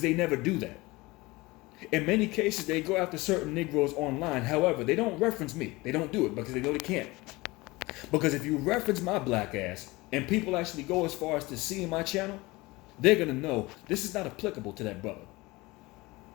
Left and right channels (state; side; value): quieter; right; 21.9 dB